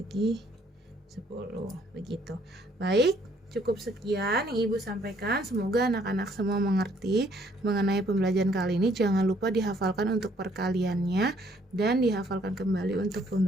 10. Begitu. Baik, cukup sekian yang Ibu sampaikan. Semoga anak-anak semua mengerti mengenai pembelajaran kali ini. Jangan lupa dihafalkan untuk perkaliannya dan dihafalkan kembali untuk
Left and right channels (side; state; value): both; normal; correlation 0.64